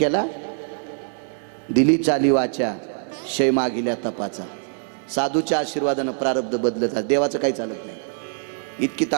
दिली चाली वाचा क्षय मागिल्या तपाचा. साधूच्या आशीर्वादानं प्रारब्ध बदलत. देवाचं काही चालत नाही. इतकी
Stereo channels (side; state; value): left; silent; digital silence